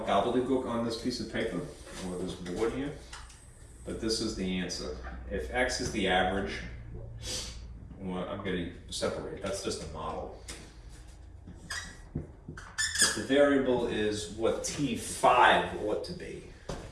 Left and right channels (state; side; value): identical; both; correlation 1.00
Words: gobbledygook on this piece of paper, or this board here, but this is the answer. If x is the average, well, I'm going to separate, that's just a model. But the variable is what T5 ought to be,